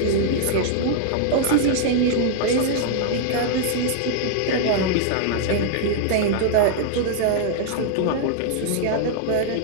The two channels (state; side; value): different; both; correlation -0.01